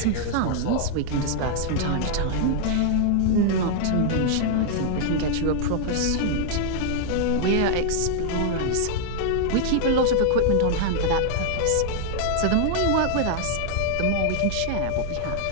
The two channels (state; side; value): different; both; correlation -0.01